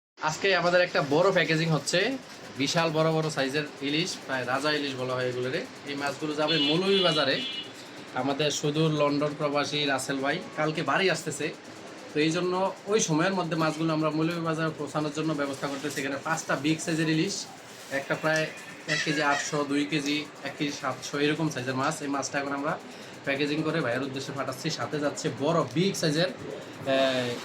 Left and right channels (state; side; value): identical; both; correlation 1.00